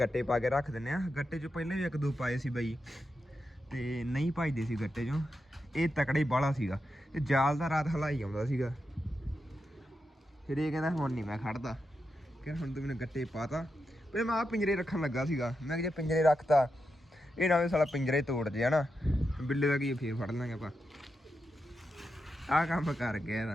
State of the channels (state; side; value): normal; both; correlation 0.87